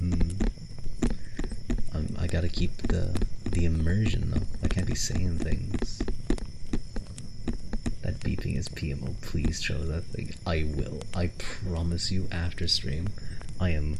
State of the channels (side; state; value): both; identical; correlation 1.00